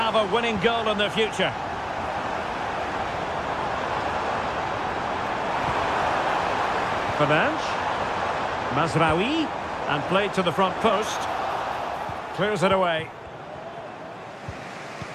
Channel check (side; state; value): both; identical; correlation 1.00